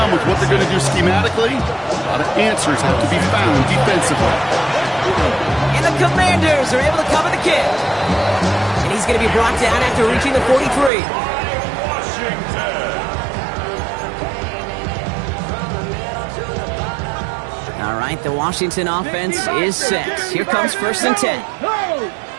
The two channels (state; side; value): drops out; left; at 10.9 s